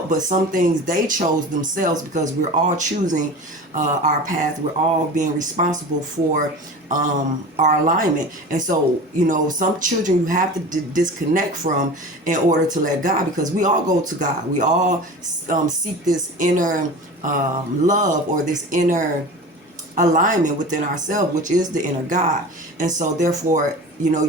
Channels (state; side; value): normal; both; correlation 0.35